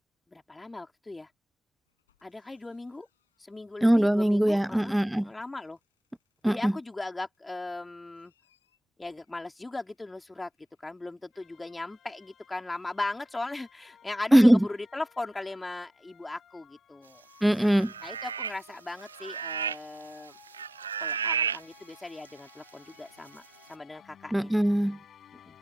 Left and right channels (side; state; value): both; normal; correlation 0.90